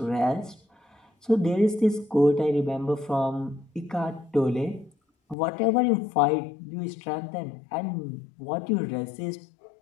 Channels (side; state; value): right; drops out; at 5.4 s